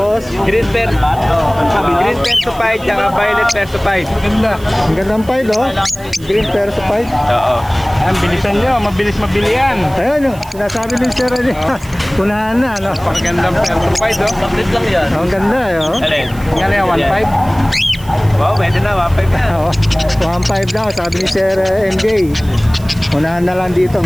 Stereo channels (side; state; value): right; noise; hiss, 21 dB below the sound